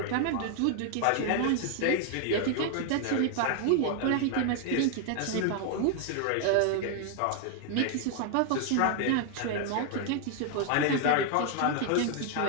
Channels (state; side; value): different; both; correlation 0.00